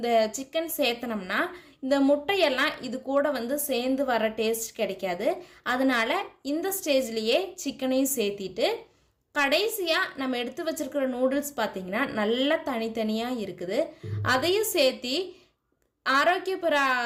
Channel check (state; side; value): identical; both; correlation 1.00